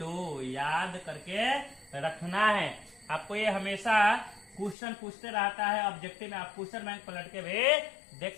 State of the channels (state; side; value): drops out; right; at 4.8 s